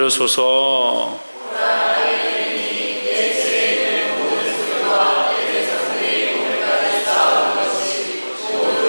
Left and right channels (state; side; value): inverted; both; correlation -1.00